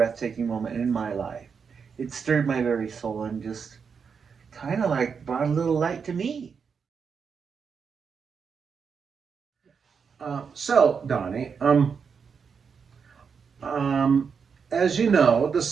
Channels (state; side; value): quieter; left; 6.1 dB